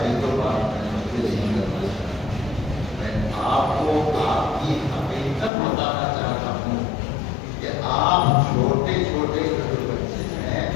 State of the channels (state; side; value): drops out; right; at 5.5 s